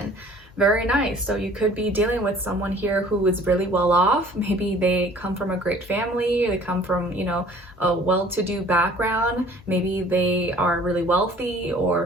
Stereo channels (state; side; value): normal; both; correlation 0.52